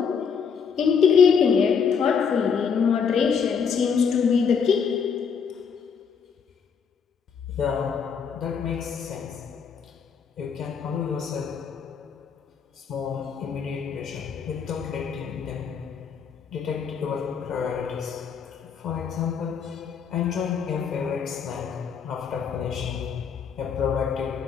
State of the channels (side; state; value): right; quieter; 6.5 dB